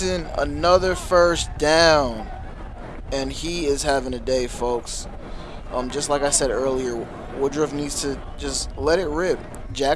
another first down. And he is having a day, folks. Just like I said earlier, Woodruff needs to just let it rip.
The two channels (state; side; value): identical; both; correlation 1.00